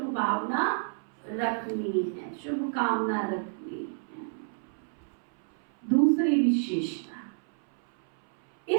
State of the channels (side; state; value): left; silent; 58 dB below the other